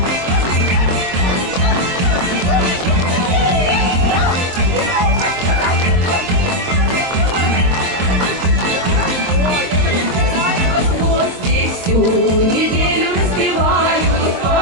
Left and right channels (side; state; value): left; late; 23 ms